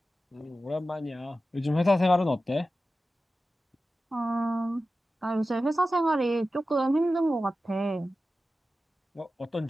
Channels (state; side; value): normal; both; correlation 0.94